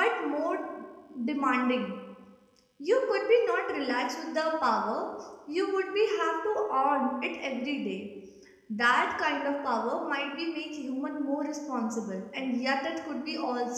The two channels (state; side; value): identical; both; correlation 1.00